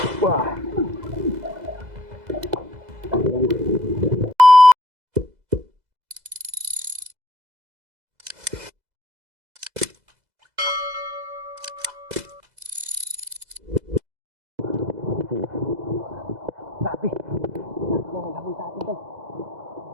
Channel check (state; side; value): late; left; 2.0 ms